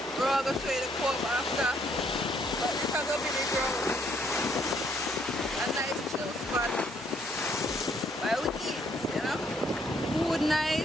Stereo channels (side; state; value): both; normal; correlation 0.68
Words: We're all going to show you the co-op after, but this is going to be the ground. A nice chill spot while we eat, you know. Food